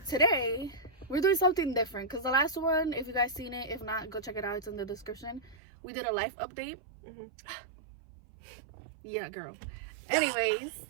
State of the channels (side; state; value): left; drops out; at 5.6 s